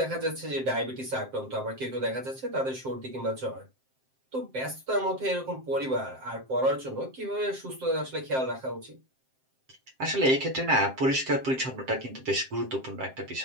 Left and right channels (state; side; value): late; left; 7.6 ms